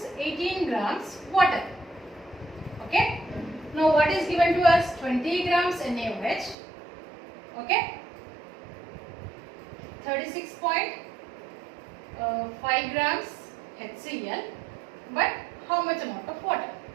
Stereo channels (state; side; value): drops out; left; at 6.6 s